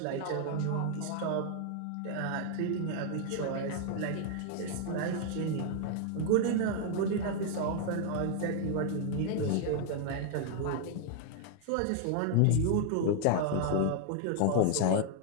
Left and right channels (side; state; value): both; different; correlation 0.00